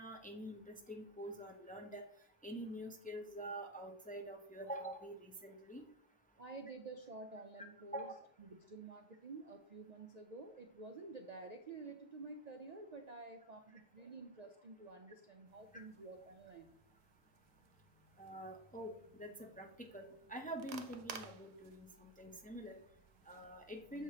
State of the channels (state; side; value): normal; both; correlation 0.13